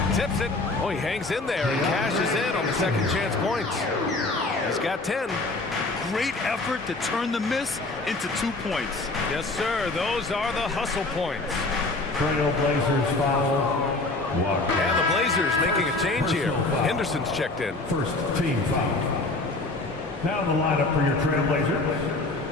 Tips it. Oh, he hangs in there and cashes in on the second chance points. He's got 10. Great effort to turn the miss into 2 points. Yes, sir. Those are the hustle points. Trailblazers foul. Walker. And the Blazers making a change here. Henderson's checked in. First team foul. Now the lineup for your Trailblazers.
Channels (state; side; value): quieter; right; 3.1 dB